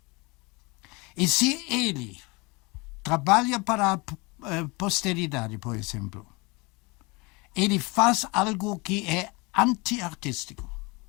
E se ele trabalha para a posteridade, por exemplo, ele faz algo que é anti-artístico.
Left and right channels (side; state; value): right; quieter; 26.5 dB